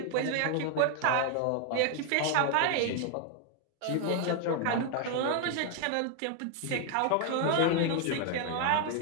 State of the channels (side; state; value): both; different; correlation 0.00